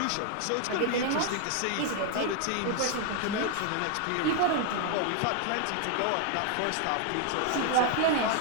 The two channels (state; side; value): different; both; correlation 0.00